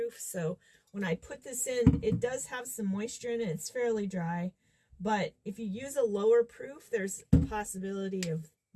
So when I put this in, it does have some moisture in it. It's fairly dry. But if you use a lower proof, there's a possibility of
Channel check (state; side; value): identical; both; correlation 1.00